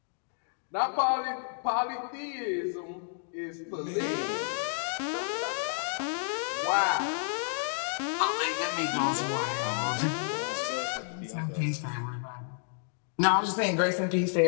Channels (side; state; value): right; silent; digital silence